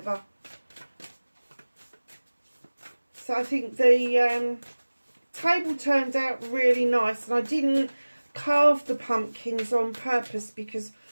So I think the table turned out really nice, and I didn't carve the pumpkins on purpose because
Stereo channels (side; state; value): both; inverted; correlation -1.00